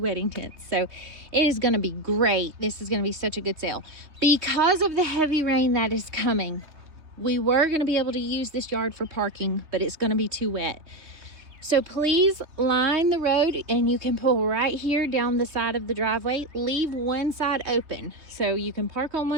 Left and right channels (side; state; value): left; late; 3.3 ms